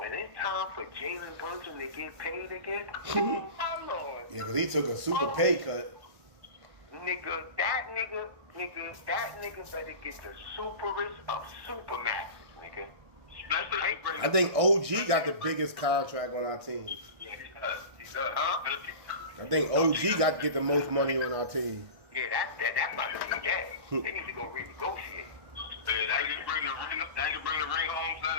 it's time for Jalen Brunson to get paid again, oh my lord. Yeah, because he took a super pay cut. Nigga, that nigga better get the superest of supermaxes, nigga. I think OG got the biggest contract on our team. Yeah, he does. Huh? I think OG got to get the most money on our team. Yeah, that might be that. They need to go renegotiate. That can bring the ring home,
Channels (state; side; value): late; left; 1.6 ms